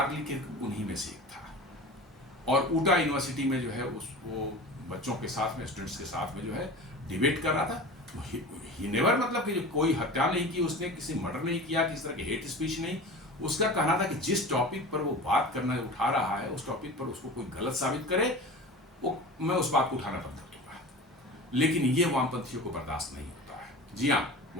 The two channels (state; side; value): normal; both; correlation 0.34